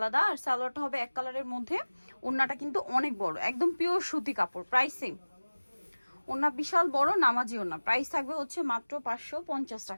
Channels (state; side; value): inverted; both; correlation -1.00